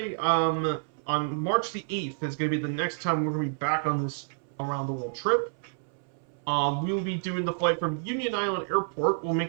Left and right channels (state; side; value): silent; left; 59 dB below the other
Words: on March the 8th is going to be the next time we're going to be back on this around the world trip. We will be doing the flight from Union Island Airport. We'll